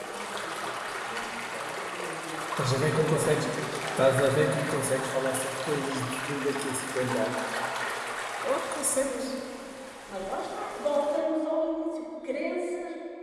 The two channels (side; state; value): both; identical; correlation 1.00